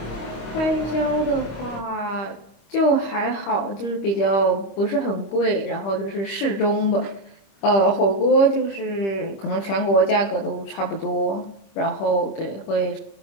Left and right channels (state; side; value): late; right; 25 ms